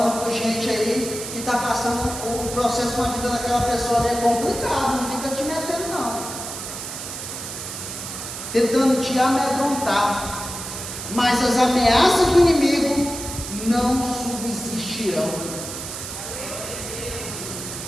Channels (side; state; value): right; noise; hiss, 8 dB below the sound